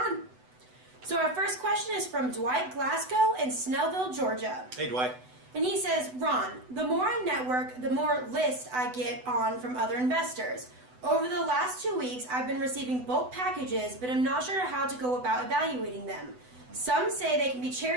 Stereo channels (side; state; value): left; late; 8.0 ms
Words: So our first question is from Dwight Glasgow in Snellville, Georgia. Hey, Dwight. And he says, Ron, the more I network, the more lists I get on from other investors. Over the last 2 weeks, I've been receiving bulk packages, but I'm not sure how to go about evaluating them. Some say they can be